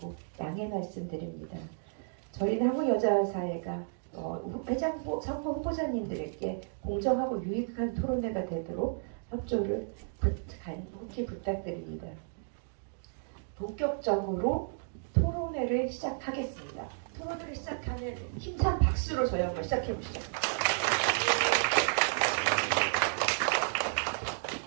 양해 말씀드립니다. 저희는 한국여자사회가 회장부 선거 후보자님들에게 공정하고 유익한 토론회가 되도록 협조를 간곡히 부탁드립니다. 본격적으로 토론회를 시작하겠습니다. 토론회를 시작하는 힘찬 박수로 저희 한번 시작해 보시죠.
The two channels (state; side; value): silent; left; digital silence